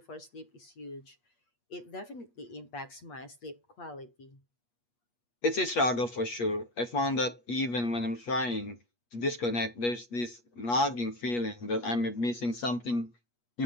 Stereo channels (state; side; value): late; right; 8.4 ms